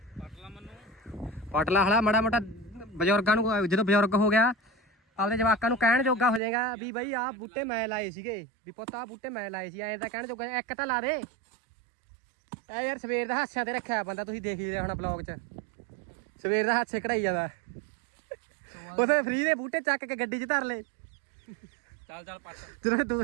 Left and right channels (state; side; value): drops out; left; at 6.4 s